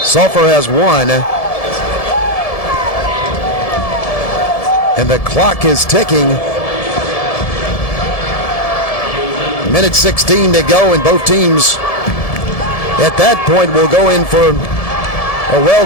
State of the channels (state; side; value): late; right; 1.7 ms